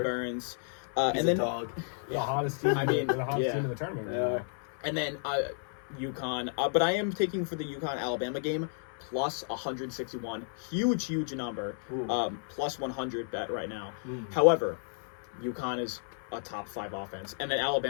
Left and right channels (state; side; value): silent; right; 56 dB below the other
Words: Burns. He's And a then dog. The hottest team. I mean, the hottest yeah. team in the tournament. Right Yeah. now. And then UConn. But I am taking for the UConn Alabama game plus 161. Huge number. Ooh. Plus 100 bet right now. Mm. However, UConn is a top 5 offense, and then